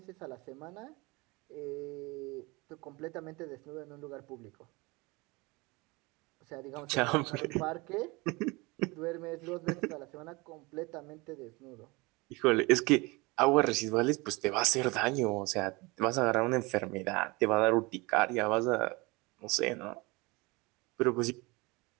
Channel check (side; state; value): left; quieter; 25.1 dB